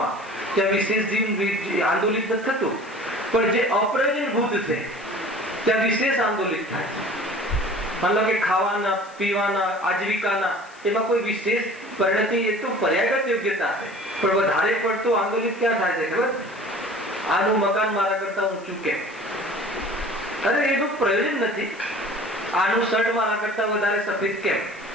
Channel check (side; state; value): left; noise; hiss, 25 dB below the sound